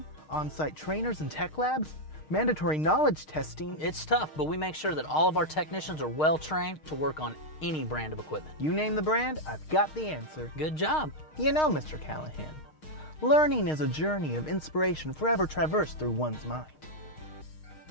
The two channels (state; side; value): late; right; 6.5 ms